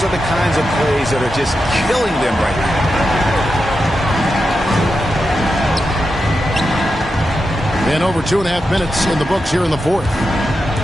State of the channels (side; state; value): both; normal; correlation 0.88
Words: are the kinds of plays that are just killing them right now. And over 2.5 minutes in the books here in the fourth.